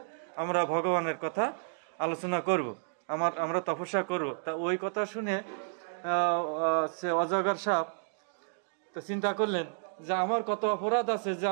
আমরা ভগবানের কথা আলোচনা করব, আমরা তপস্যা করব। তা ওই কথা শুনে সে অজগর সাপ তো চিন্তা করলেন যে আমার কত অপরাধ আছে যে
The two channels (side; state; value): left; silent; digital silence